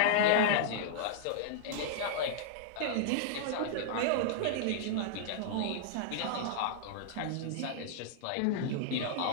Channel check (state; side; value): different; both; correlation -0.01